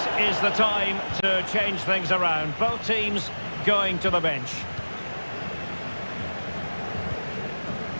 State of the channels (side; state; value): both; inverted; correlation -1.00